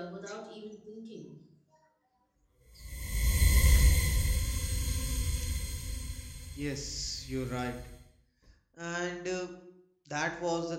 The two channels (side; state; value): both; identical; correlation 1.00